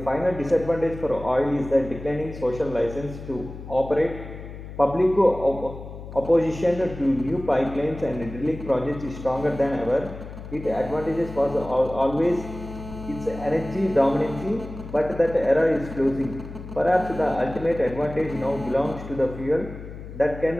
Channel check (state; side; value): noise; left; hum, 12 dB below the sound